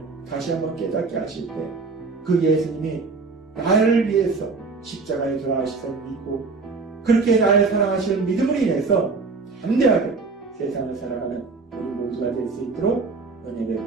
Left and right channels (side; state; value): left; quieter; 4.2 dB